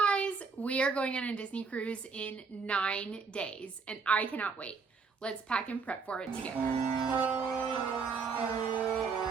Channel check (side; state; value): left; quieter; 5.0 dB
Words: We are going on a Disney cruise in 9 days and I cannot wait. Let's pack and prep for it together.